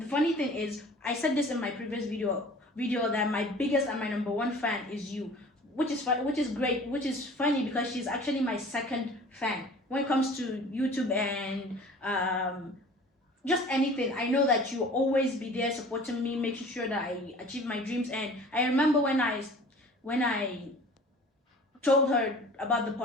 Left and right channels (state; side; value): normal; both; correlation 0.45